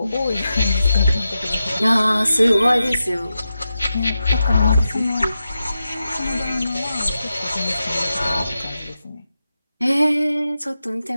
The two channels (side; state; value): both; inverted; correlation -0.90